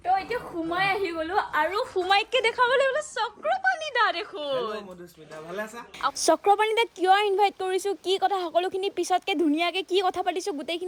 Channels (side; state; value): both; identical; correlation 1.00